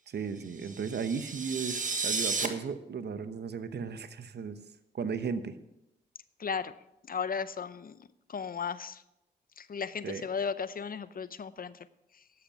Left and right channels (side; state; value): both; normal; correlation 0.22